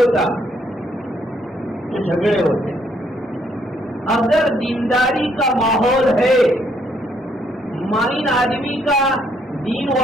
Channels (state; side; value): normal; both; correlation 0.70